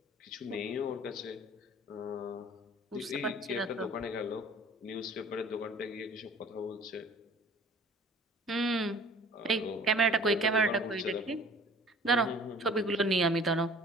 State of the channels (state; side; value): normal; both; correlation 0.49